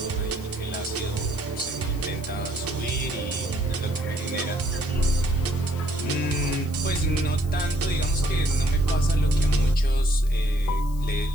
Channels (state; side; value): noise; left; hiss, 20 dB below the sound